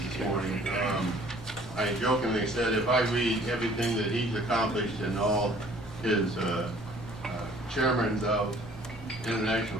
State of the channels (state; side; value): normal; both; correlation 0.55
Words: morning. I jokingly said if I read everything that he's accomplished and all his chairmen of